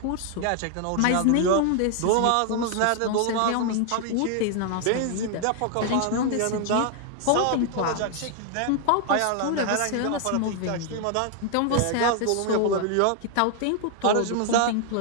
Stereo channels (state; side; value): different; both; correlation 0.00